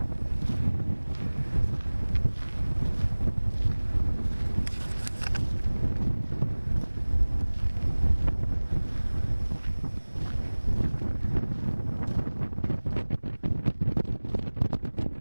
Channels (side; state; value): both; inverted; correlation -1.00